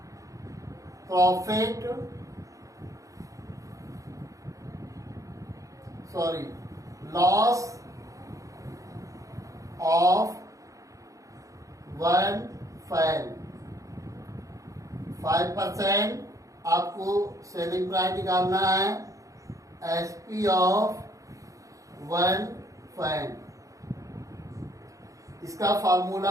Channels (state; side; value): late; left; 0.16 ms